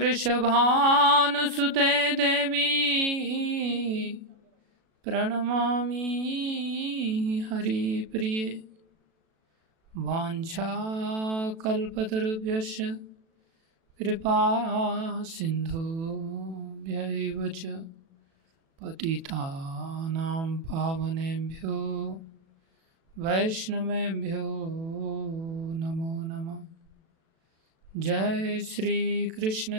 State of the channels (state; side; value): late; left; 37 ms